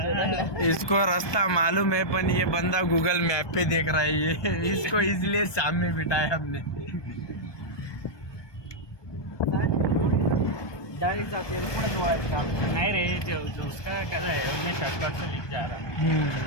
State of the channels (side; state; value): right; late; 1.2 ms